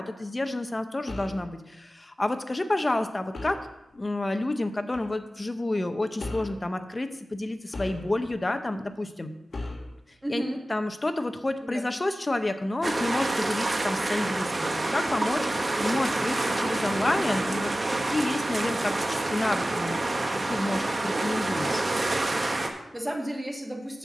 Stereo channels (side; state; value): both; normal; correlation 0.95